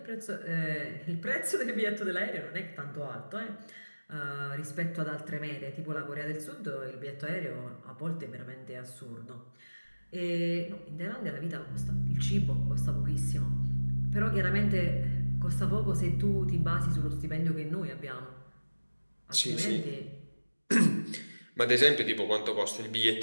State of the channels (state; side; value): inverted; both; correlation -1.00